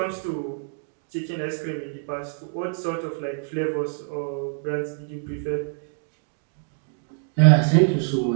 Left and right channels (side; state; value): left; silent; digital silence